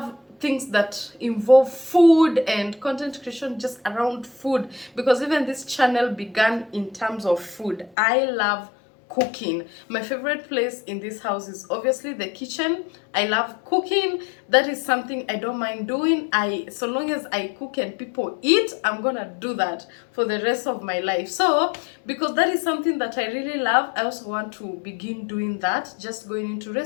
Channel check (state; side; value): drops out; right; at 8.0 s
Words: things that involve food and content creation just around food, because even this channel began in terms of food. I love cooking. My favorite place in this house is obviously the kitchen. I love cooking. That is something I don't mind doing. So long as I cook and people eat, I'm gonna do that for the rest of my life. So because that is something that I really love, I also want to begin doing that, just going into